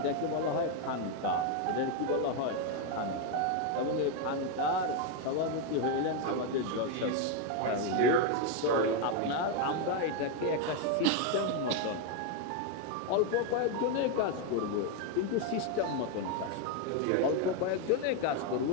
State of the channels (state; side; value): different; both; correlation 0.02